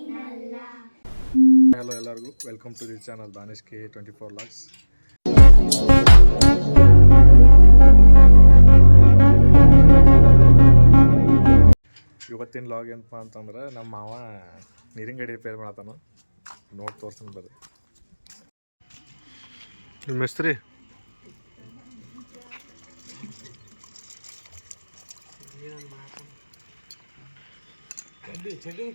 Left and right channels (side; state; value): both; inverted; correlation -1.00